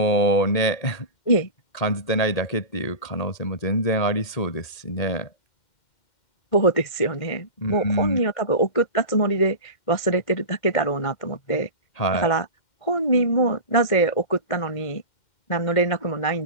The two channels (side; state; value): right; late; 2.1 ms